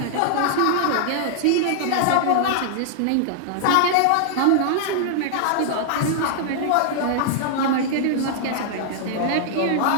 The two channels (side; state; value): both; different; correlation -0.01